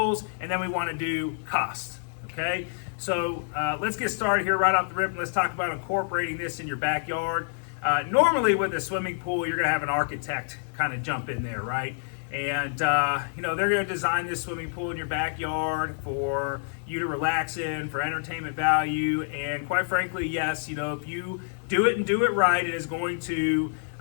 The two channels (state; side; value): silent; right; 60 dB below the other